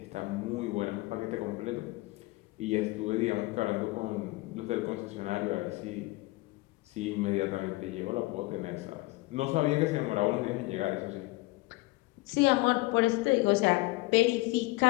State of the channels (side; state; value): right; quieter; 21.3 dB